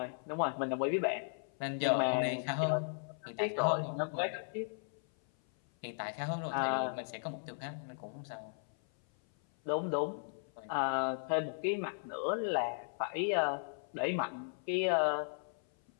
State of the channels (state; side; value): silent; right; 54 dB below the other